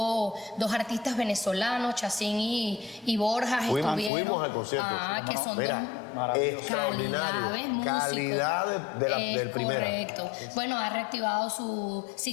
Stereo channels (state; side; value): drops out; right; at 4.1 s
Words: dos artistas venezolanos, Chacín y Borjas. Fuimos al concierto. Que son extraordinario. Calidad del primero. Correcto. Bueno, ha reactivado su